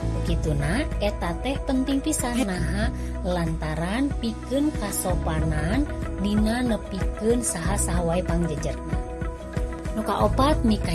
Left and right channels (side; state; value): both; identical; correlation 1.00